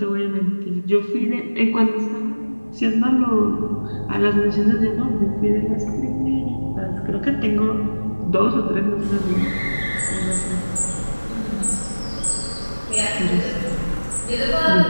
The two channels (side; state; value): both; inverted; correlation -1.00